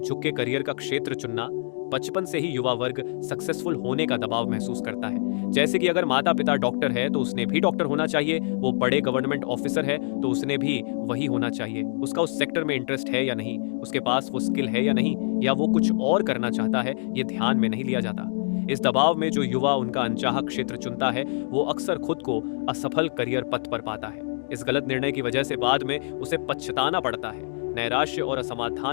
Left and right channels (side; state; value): right; silent; digital silence